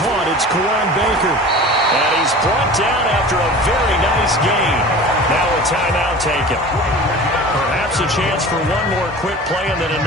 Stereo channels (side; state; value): both; normal; correlation 0.38